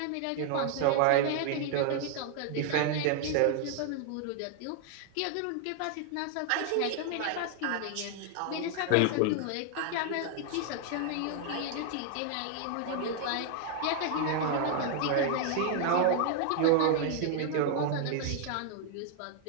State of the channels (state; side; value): different; both; correlation 0.00